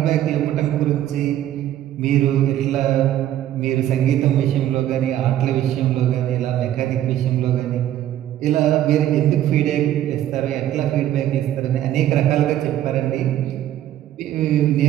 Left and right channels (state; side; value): quieter; left; 12.3 dB